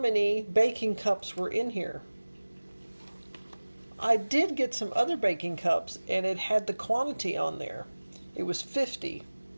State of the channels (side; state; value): both; inverted; correlation -1.00